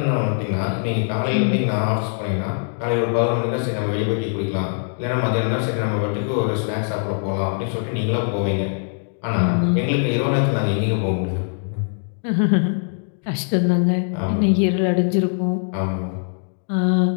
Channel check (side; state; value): right; silent; digital silence